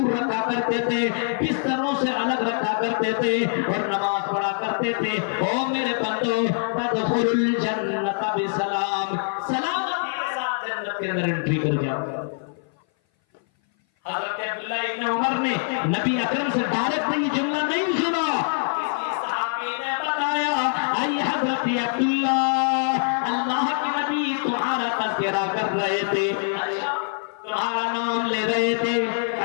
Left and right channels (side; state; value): right; silent; 58 dB below the other